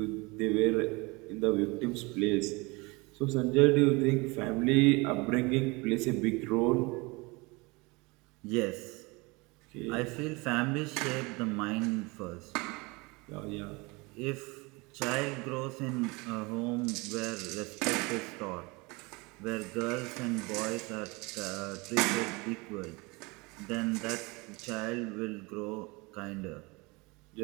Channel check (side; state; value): left; quieter; 26.0 dB